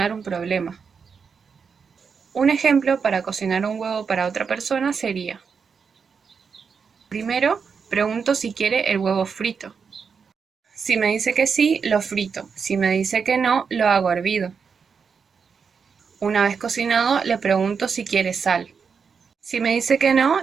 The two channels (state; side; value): quieter; left; 5.9 dB